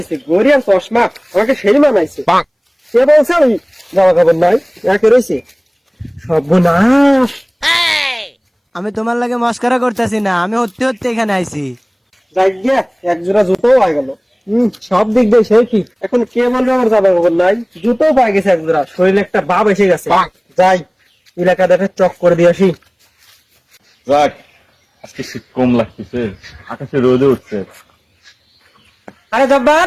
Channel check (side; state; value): both; identical; correlation 1.00